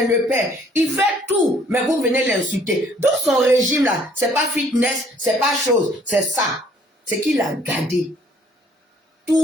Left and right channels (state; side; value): normal; both; correlation 0.60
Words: père. Il fait tout, mais vous venez l'insulter. Donc son régime là, c'est pas fitness, c'est pas chose, c'est ça. C'est qu'il a gardé.